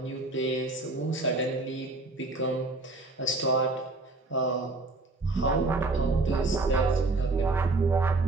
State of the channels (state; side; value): quieter; left; 3.2 dB